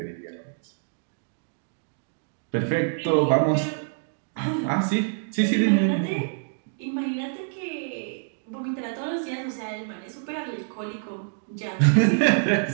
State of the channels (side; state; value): left; silent; digital silence